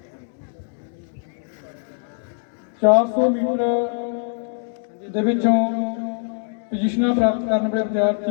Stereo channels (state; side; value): silent; right; 64 dB below the other